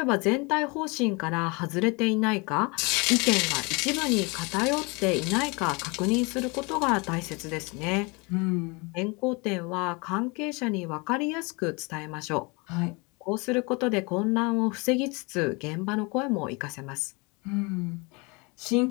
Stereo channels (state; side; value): quieter; right; 28.5 dB